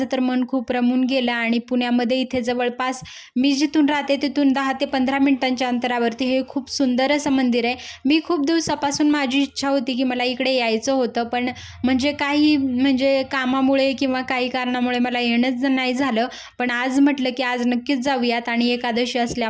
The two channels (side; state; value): both; identical; correlation 1.00